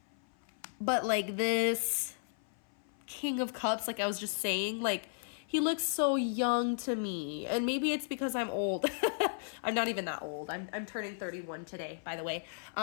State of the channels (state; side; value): silent; right; 55 dB below the other